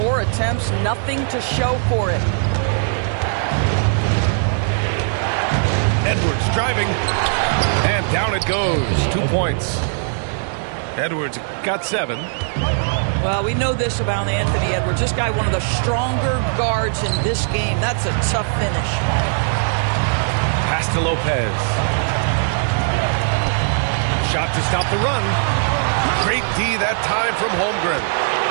attempts, nothing to show for it. Edwards driving. And down it goes. 2 points. Edwards got 7. Well, we know this about Anthony Edwards. This guy, one of the stronger guards in this game. That's a tough finish. Pass to Lopez. Shot to stop the run. Great D that time from Holmgren.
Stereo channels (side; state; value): left; silent; digital silence